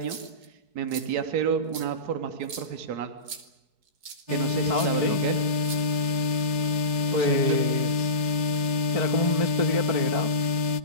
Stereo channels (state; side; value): late; left; 4.7 ms